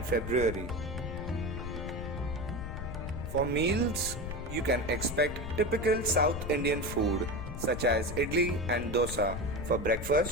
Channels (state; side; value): noise; left; rumble, 7 dB below the sound